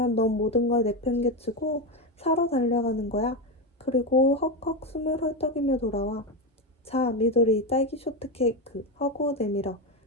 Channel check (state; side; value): normal; both; correlation 0.13